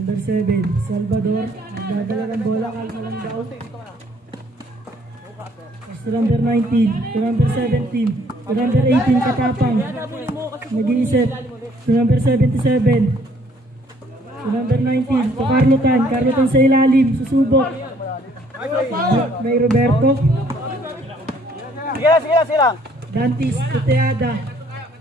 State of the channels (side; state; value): both; normal; correlation 0.62